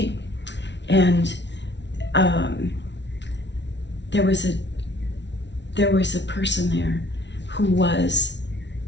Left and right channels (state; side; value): late; right; 0.51 ms